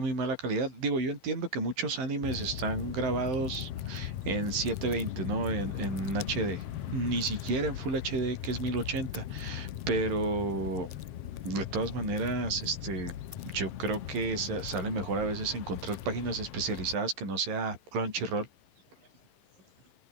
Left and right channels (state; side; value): late; left; 11 ms